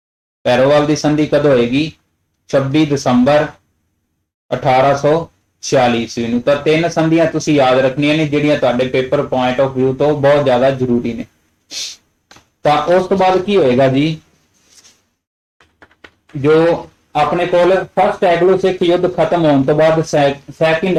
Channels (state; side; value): identical; both; correlation 1.00